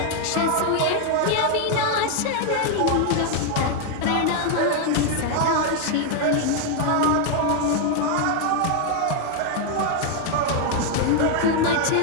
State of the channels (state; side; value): different; both; correlation 0.00